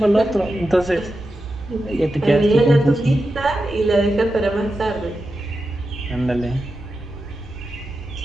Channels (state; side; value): normal; both; correlation 0.90